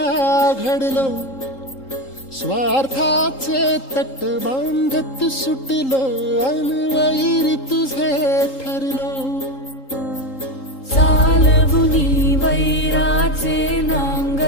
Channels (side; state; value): right; late; 3.7 ms